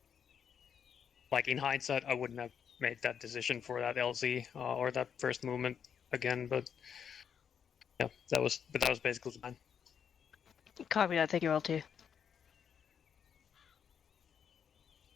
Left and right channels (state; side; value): quieter; right; 7.7 dB